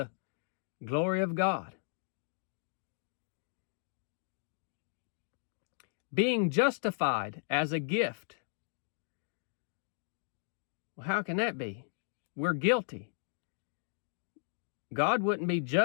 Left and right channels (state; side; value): silent; right; digital silence